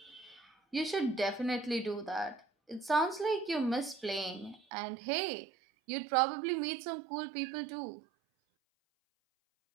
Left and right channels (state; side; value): drops out; left; at 4.6 s